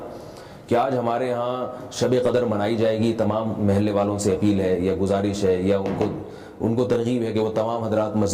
کہ آج ہمارے ہاں شب قدر منائی جائے گی، تمام محلے والوں سے اپیل ہے یا گزارش ہے یا ان کو ترغیب ہے کہ وہ تمام حضرات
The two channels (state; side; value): identical; both; correlation 1.00